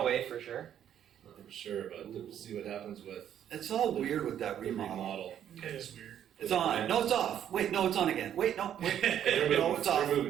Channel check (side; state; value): left; quieter; 10.0 dB